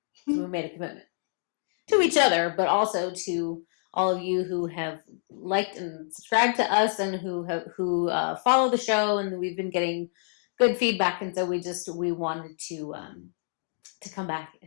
So we made a commitment to each other, but also to all of you who have liked and subscribed to us and who follow the show, and we've been getting good feedback, and so we wanted to come back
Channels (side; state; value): right; silent; digital silence